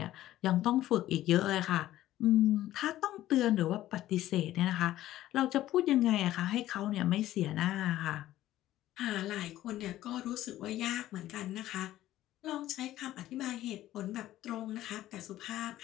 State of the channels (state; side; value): quieter; right; 14.2 dB